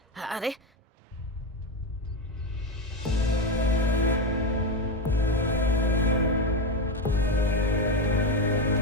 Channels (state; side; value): normal; both; correlation 0.13